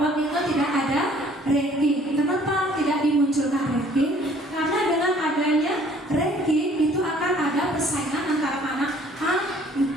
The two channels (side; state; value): both; normal; correlation 0.57